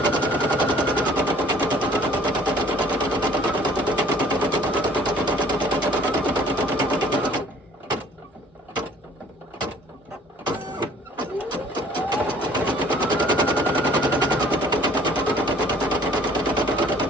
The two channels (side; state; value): both; normal; correlation 0.54